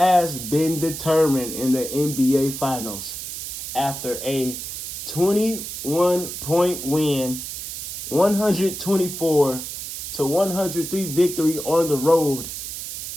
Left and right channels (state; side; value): noise; right; hiss, 7 dB below the sound